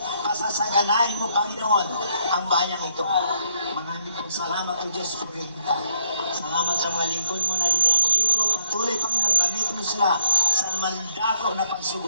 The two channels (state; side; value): inverted; both; correlation -0.72